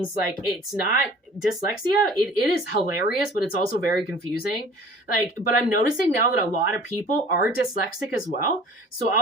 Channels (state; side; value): normal; both; correlation 0.47